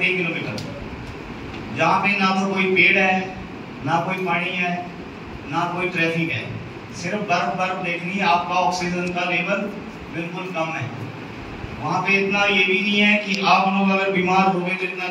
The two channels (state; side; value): identical; both; correlation 1.00